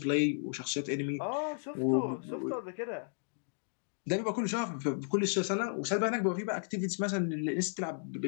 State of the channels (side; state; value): right; silent; digital silence